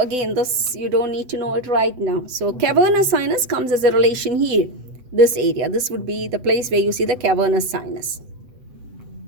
this you don't need to know it right now. So cavernous sinus comes as a relation here, this area. This would be the place where you see the cavernous sinus.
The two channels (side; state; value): left; late; 8.0 ms